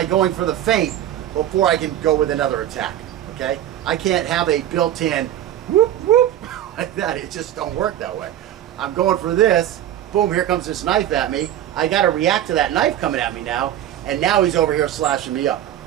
going for the feint before I can go with another attack, okay? I can't have a built-in whoop, whoop, like that. It just don't work that way. I'm going for this, boom, here comes this knife at me. I gotta react to that knife coming at me now, and now he's over here slashing me up.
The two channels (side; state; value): left; quieter; 11.8 dB